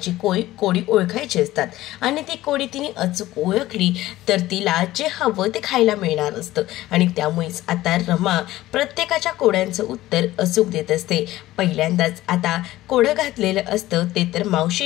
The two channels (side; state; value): right; quieter; 16.1 dB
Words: कोडी ओळखायची असतात आणि ती कोडी तिने अचूक ओळखली तर तिला जे हवं ते खायला मिळणार असतं आणि त्यामुळेच आता रमा प्रत्येकाच्या कोड्यांचं उत्तर अचूक देत असते। पहिल्यांदाच आता कोडं घातलेलं असतं ते तर